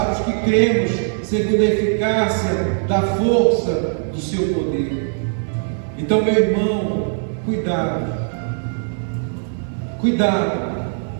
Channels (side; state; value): left; silent; digital silence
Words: os que cremos, segundo a eficácia da força do seu poder. Então, meu irmão, cuidado,